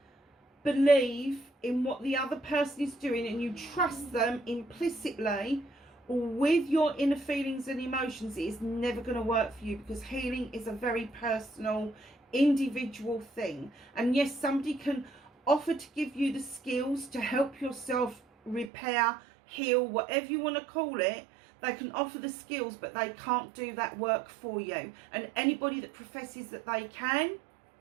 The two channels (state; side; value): drops out; left; at 18.7 s